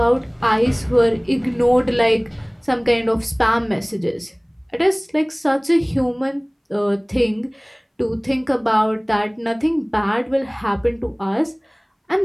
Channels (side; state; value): both; identical; correlation 1.00